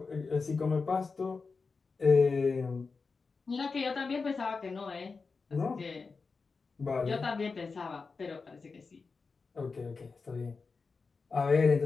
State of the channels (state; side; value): quieter; right; 4.6 dB